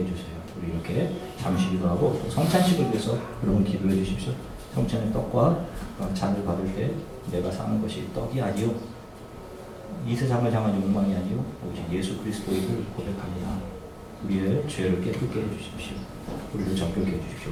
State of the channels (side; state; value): both; identical; correlation 1.00